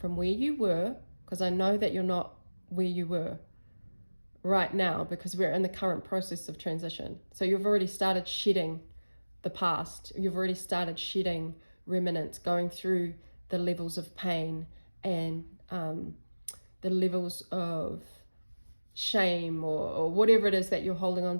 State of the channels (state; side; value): inverted; both; correlation -1.00